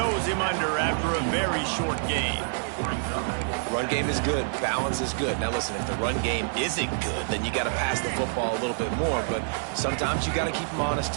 him under after a very short game. Run game is good. Balance is good. Now, listen, if the run game isn't good, then you got to pass the football a little bit more, but sometimes you got to keep them honest,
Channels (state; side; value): silent; left; 56 dB below the other